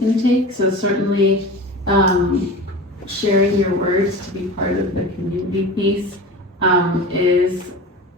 take. So certainly sharing your words to be part of the community piece is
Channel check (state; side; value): normal; both; correlation 0.33